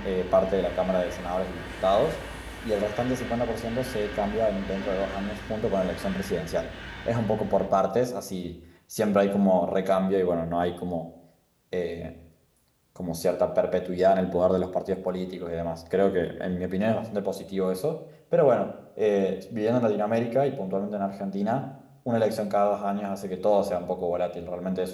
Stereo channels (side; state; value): both; identical; correlation 1.00